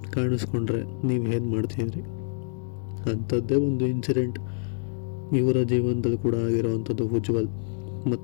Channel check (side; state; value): right; silent; digital silence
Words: ಕಾಣಿಸ್ಕೊಂಡ್ರೆ ನೀವು ಏನು ಮಾಡ್ತಿದ್ರಿ? ಅಂಥದ್ದೇ ಒಂದು ಇನ್ಸಿಡೆಂಟ್ ಇವರ ಜೀವನದಲ್ಲಿ ಕೂಡ ಆಗಿರೋವಂಥದ್ದು. ಉಜ್ವಲ್